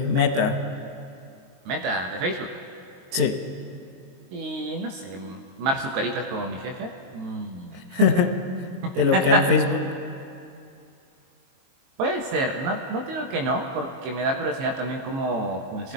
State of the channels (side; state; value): left; late; 22 ms